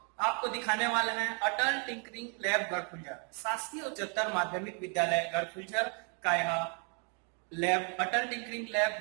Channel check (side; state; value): left; quieter; 39.5 dB